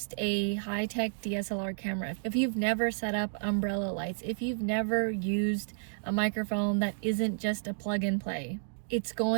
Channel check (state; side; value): silent; left; digital silence